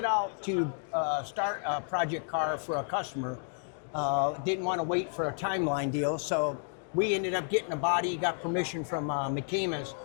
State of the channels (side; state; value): right; silent; 55 dB below the other